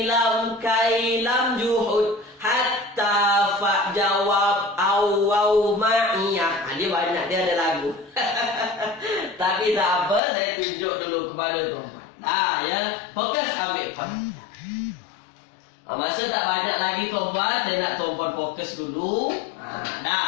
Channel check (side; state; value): right; drops out; at 10.2 s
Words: lam, juhud, hatta, fa, jawab, aw, ma'iyah. Dia banyak, dia ada lagu. Tapi tak apa, saya tunjuk dulu kepada tuan-puan. Ya, fokus ambil perhatian. Masa tak banyak lagi tuan-puan, saya nak tuan-puan fokus dulu.